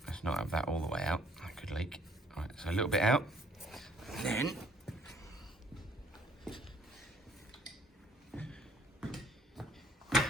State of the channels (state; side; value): normal; both; correlation 0.61